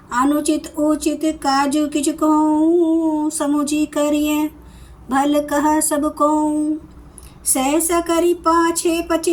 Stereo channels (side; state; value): both; identical; correlation 1.00